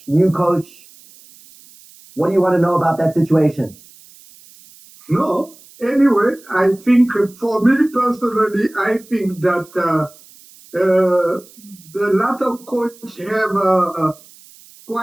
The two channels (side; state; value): right; noise; hiss, 24 dB below the sound